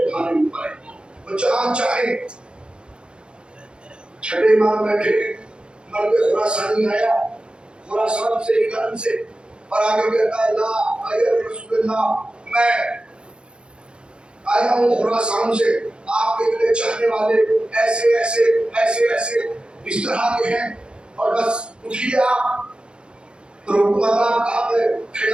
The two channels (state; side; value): late; left; 0.054 ms